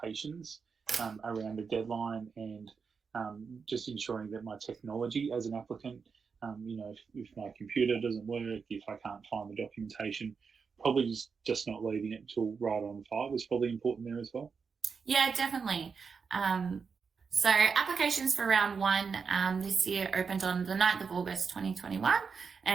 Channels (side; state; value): left; quieter; 5.6 dB